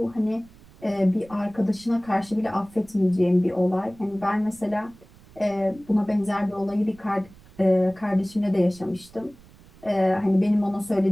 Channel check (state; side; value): noise; right; rumble, 24 dB below the sound